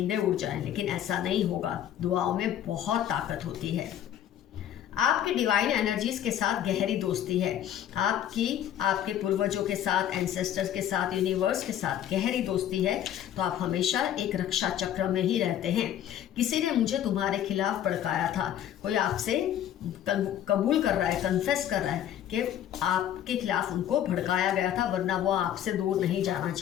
उड़ जाएं, लेकिन ऐसा नहीं होगा। दुआओं में बहुत ताकत होती है। आपकी डिवाइन एनर्जीज के साथ गहरी दोस्ती है। आपके पूर्वजों के साथ, एंसेस्टर्स के साथ, यूनिवर्स के साथ गहरी दोस्ती है, तो आप हमेशा एक रक्षा चक्र में ही रहते हैं। किसी ने मुझे तुम्हारे खिलाफ भड़काया था, कोई आपसे कबूल कर रहा है, कन्फेस कर रहा है कि आपके खिलाफ उनको भड़काया गया था, वरना वो आपसे दूर नहीं जाना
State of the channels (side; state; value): right; quieter; 10.8 dB